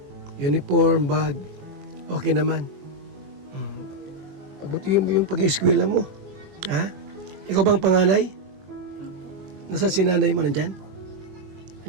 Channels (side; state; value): left; late; 21 ms